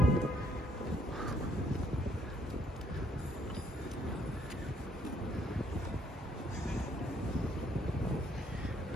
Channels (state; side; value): normal; both; correlation 0.67